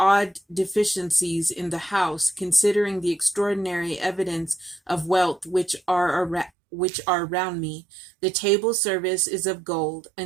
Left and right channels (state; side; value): drops out; left; at 6.5 s